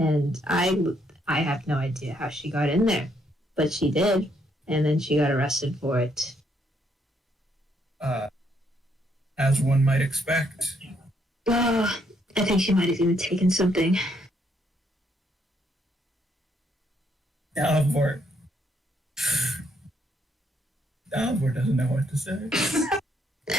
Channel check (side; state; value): both; normal; correlation 0.72